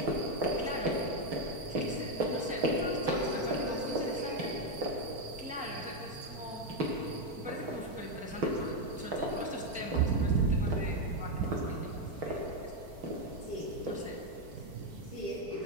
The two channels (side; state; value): left; late; 4.5 ms